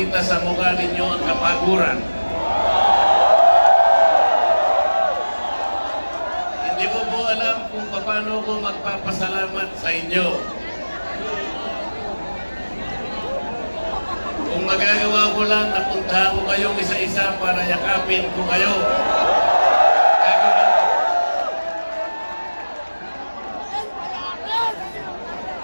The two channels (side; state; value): both; inverted; correlation -1.00